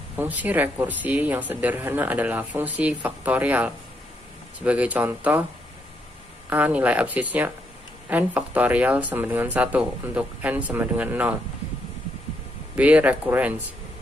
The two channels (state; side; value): normal; both; correlation 0.77